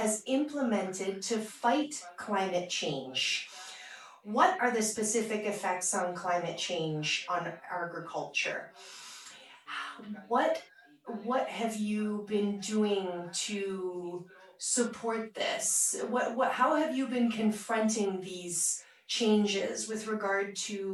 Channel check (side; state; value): both; identical; correlation 1.00